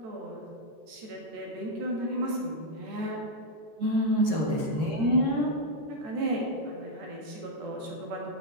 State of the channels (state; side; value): late; left; 13 ms